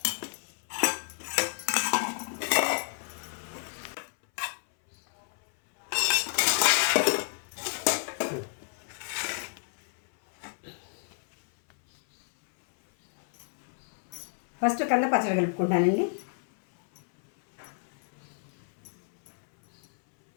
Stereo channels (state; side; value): silent; right; 58 dB below the other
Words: ఫస్ట్ కంద పచ్చడి కలుపుకుంటానండి.